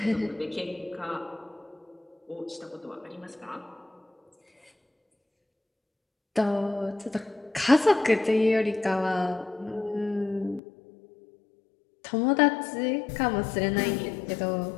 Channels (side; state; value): right; drops out; at 10.6 s